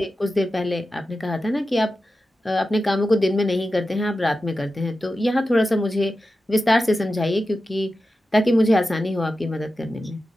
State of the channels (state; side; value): normal; both; correlation 0.92